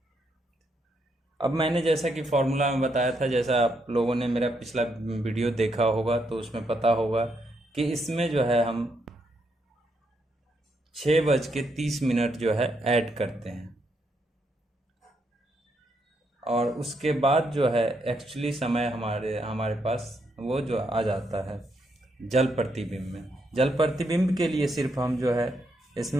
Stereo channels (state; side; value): normal; both; correlation 0.78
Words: अब मैंने जैसा कि फॉर्मूला में बताया था, जैसा आप लोगों ने मेरा पिछला वीडियो देखा होगा तो उसमें पता होगा कि इसमें जो है हम 6:30 जो है ऐड करते हैं, और उसके बाद जो है एक्चुअली समय हमारे पास वो जो आ जाता है जल प्रतिबिंब में। जल प्रतिबिंब के लिए सिर्फ हम जो है